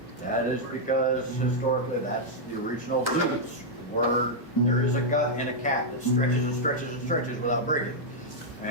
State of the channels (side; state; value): both; normal; correlation -0.05